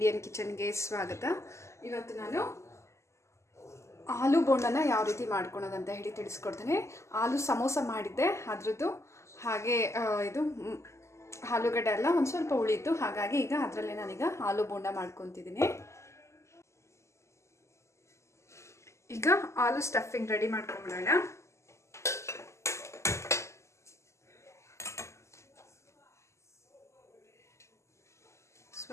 ಕಿಚನ್ಗೆ ಸ್ವಾಗತ. ಇವತ್ತು ನಾನು ಆಲೂ ಬೋಂಡನ ಯಾವ ರೀತಿ ಮಾಡ್ಕೊಳೋದಂತ ಹೇಳಿ ತಿಳಿಸ್ಕೊಡ್ತೇನೆ. ಆಲೂ ಸಮೋಸ ಮಾಡಿದ್ದೆ ಅದ್ರದ್ದು, ಹಾಗೆ ಇದು ಆಲೂಗಡ್ಡೆ ಎಲ್ಲ ಒಂದು ಸ್ವಲ್ಪ ಉಳಿತು, ಹಾಗಾಗಿ ಈಗ ಅದರಲ್ಲೇ ನಾನೀಗ ಆಲೂ ಬೋಂಡ ಮಾಡ್ಕೊತಿದ್ದೀನಿ. ಈಗ ಆಲೂ ಸ್ಟಫಿಂಗ್ ರೆಡಿ ಮಾಡ್ಕೊಂಬಿಡೋಣ.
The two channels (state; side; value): late; right; 0.13 ms